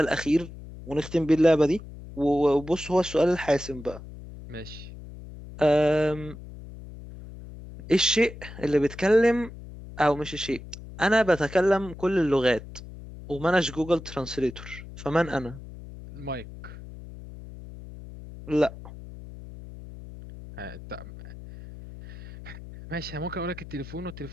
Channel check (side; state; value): left; noise; hum, 14 dB below the sound